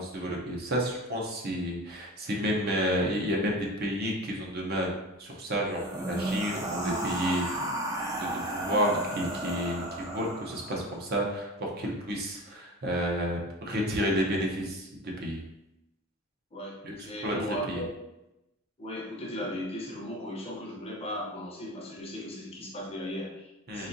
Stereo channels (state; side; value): normal; both; correlation 0.34